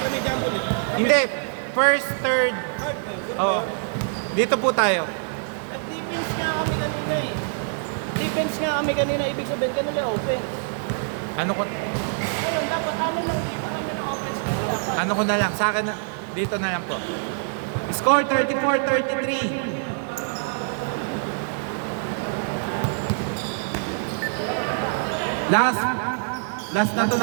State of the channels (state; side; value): silent; left; digital silence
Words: hindi, first, third. Oo. Dito po tayo. Defense nga kami kanina, ibig sabihin kanila offense. Ano ko? Ngayon, dapat amin ng offense. Ano ko na lang, sa akin na, dito na lang po. Score 34-33. Last na to